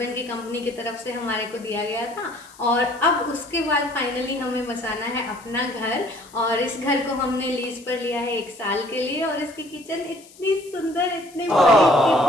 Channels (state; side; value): noise; left; hiss, 23 dB below the sound